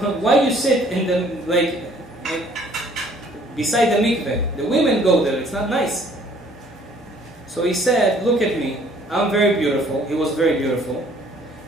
why you sit in the, beside the mikveh? The women go there, it's not nice. So he said, look at me, I'm very beautiful. He was very beautiful.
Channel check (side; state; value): both; normal; correlation 0.58